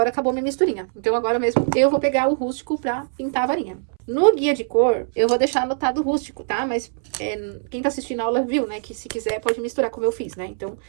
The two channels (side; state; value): left; silent; 64 dB below the other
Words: acabou minha misturinha. Então, agora mesmo, eu vou pegar o rústico pra pintar a varinha. No guia de cor, eu vou deixar anotado o rústico, tá? Mas quem tá assistindo a aula viu, né? Que se quiser, pode misturar como eu fiz, né? Então,